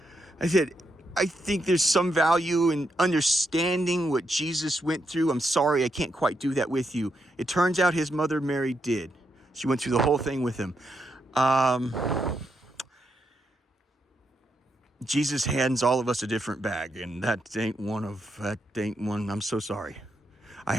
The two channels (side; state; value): both; normal; correlation 0.81